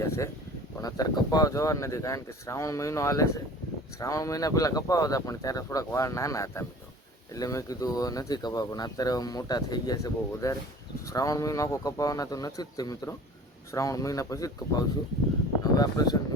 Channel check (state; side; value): normal; both; correlation 0.44